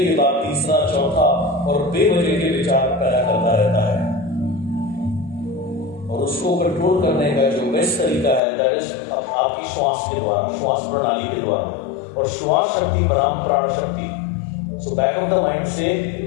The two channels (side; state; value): right; drops out; at 8.4 s